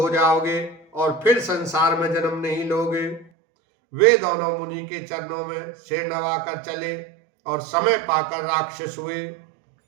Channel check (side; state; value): left; drops out; at 3.2 s